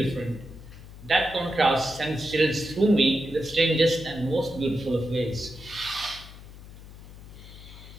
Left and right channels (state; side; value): noise; left; hum, 16 dB below the sound